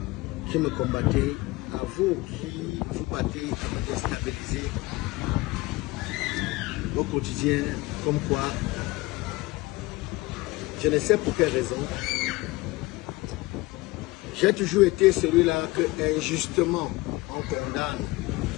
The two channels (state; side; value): quieter; right; 21.7 dB